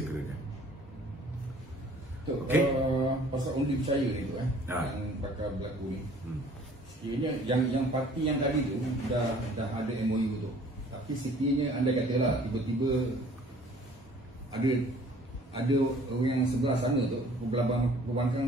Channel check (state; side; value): normal; both; correlation 0.53